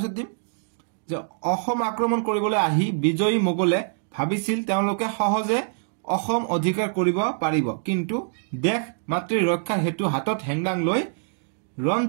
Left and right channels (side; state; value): left; silent; digital silence